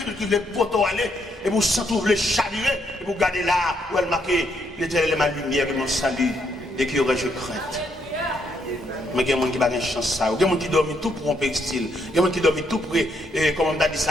qui veut poteau aller, et vous sentez les chavirer, et vous regardez là, où elle marque, l'Éternel est ma lumière et mon salut, et qui aurais-je crainte. Mais il y a des gens qui n'ont pas de chance. Il y a des gens qui dorment tout pour un textile. Il y a des gens qui dorment tout pour, comme on a dit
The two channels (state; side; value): normal; both; correlation 0.74